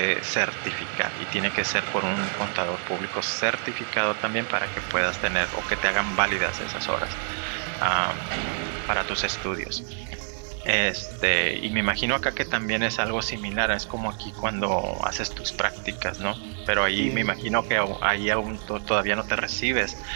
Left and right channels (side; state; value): left; silent; 59 dB below the other